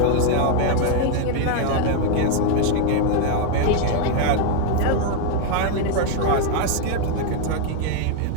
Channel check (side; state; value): both; different; correlation 0.00